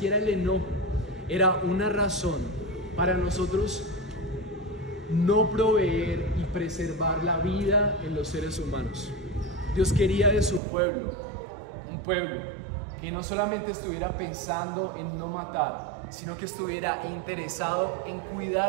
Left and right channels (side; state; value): left; drops out; at 10.6 s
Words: el enojo era una razón para nosotros no proveer y preservar la vida en los seres humanos. Dios quería de su pueblo, un pueblo que no solamente estuviera pensando en no matar, sino que estuviera interesado en